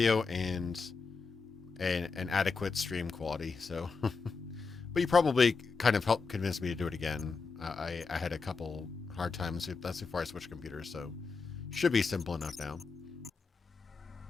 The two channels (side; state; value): right; quieter; 4.7 dB